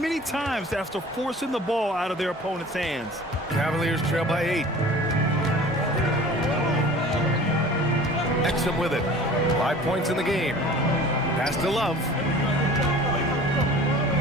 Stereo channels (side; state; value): both; normal; correlation 0.44